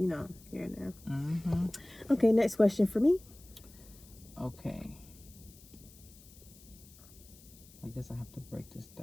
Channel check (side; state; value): left; noise; hiss, 22 dB below the sound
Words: know, here and there. Mm-hmm. Okay, next question for me. Okay. I guess I have to break this